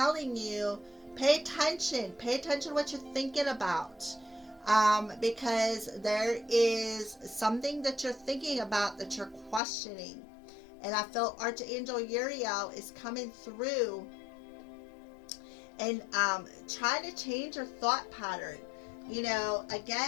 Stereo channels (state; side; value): drops out; right; at 9.6 s